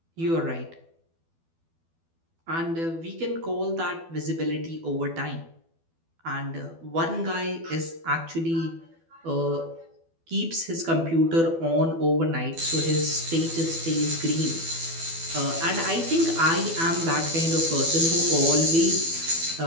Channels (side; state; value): left; late; 12 ms